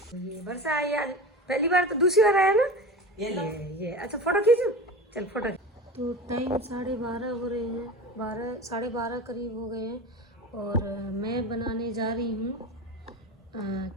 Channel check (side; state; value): both; normal; correlation 0.30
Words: ये वर्षा आई आज, पहली बार, तो दूसरी बार आया ना ये। अच्छा, फोटो खींचो, चल फोटो। तो टाइम 12:30 हो रहे हैं, 12:30 करीब हो गए हैं, और मैं बनाने जा रही हूँ